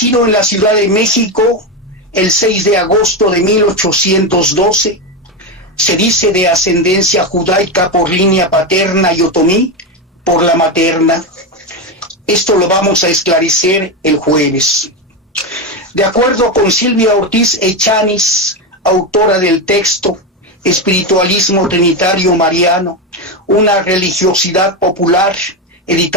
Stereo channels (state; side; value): normal; both; correlation 0.12